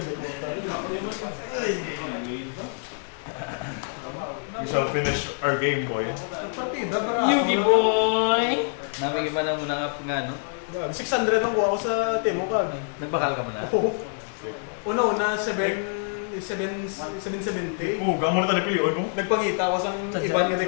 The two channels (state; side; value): silent; right; 61 dB below the other